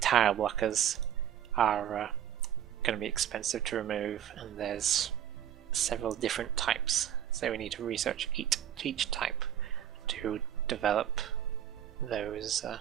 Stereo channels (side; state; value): left; quieter; 10.1 dB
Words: blockers are going to be expensive to remove, and there's several different types, so we need to research each type to develop those